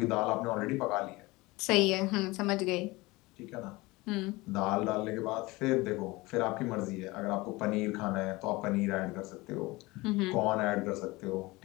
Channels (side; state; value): right; quieter; 22.0 dB